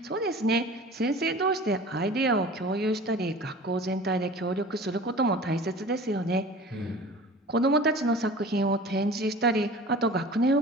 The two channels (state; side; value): normal; both; correlation 0.40